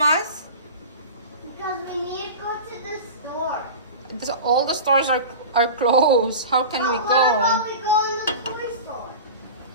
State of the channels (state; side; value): inverted; both; correlation -0.31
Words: Because we need to go to the store. All the stores are closed. How can we go? What about we go in the toy store?